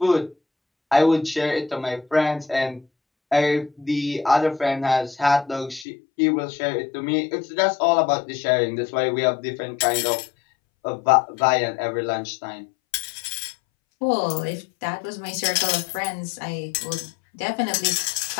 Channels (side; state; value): right; drops out; at 5.9 s